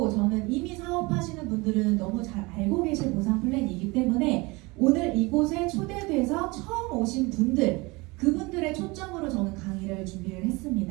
저는 이미 사업하시는 분들은 너무 잘 알고 계실 보상 플랜이기 때문에 오늘 이곳에 초대돼서 처음 오신 분들 그분들의 초점으로 저는 강의를 준비를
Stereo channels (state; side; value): quieter; left; 24.6 dB